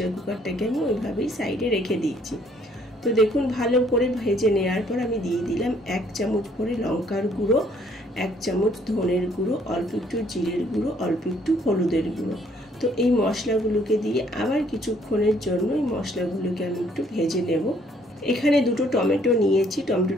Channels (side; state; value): both; normal; correlation 0.64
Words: কুকারটাকে আমি ওইভাবেই সাইডে রেখে দিয়েছি। তো দেখুন ভালো করে ভেজে নেওয়ার পর আমি দিয়ে দিলাম 1 চামচ ভরে লঙ্কার গুঁড়ো, 1 চামচ ধনের গুঁড়ো, অল্প একটু জিরের গুঁড়ো, অল্প একটু হলুদের গুঁড়ো। তো এই মশলাগুলোকে দিয়ে আবার কিছুক্ষণের জন্য এই মশলাগুলোকে আমি একটু ভেজে নেব। এখানে 2টো টমেটো নিয়েছি।